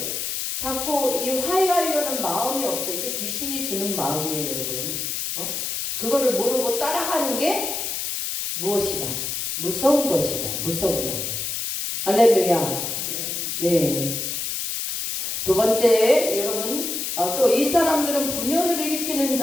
자꾸 이 화해하려는 마음이 없어. 이게 귀신이 주는 마음이에요 여러분. 그거를 모르고 따라가는 게 무엇이다? 무서운 것이다. 무서운 것. 할렐루야. 네. 두 번째 여러분 또 이 사람들은 분열을 일으키는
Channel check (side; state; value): left; noise; hiss, 3 dB below the sound